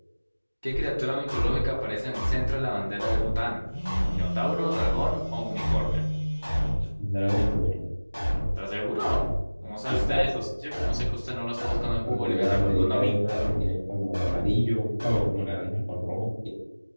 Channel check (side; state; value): both; inverted; correlation -1.00